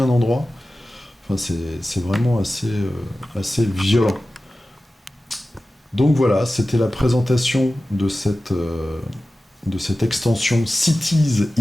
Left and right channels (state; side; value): normal; both; correlation 0.95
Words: endroit. Enfin c'est vraiment assez violent. Donc voilà, c'était la présentation de cette extension Cities